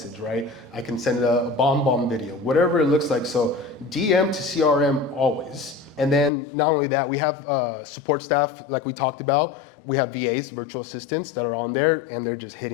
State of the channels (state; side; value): drops out; right; at 6.3 s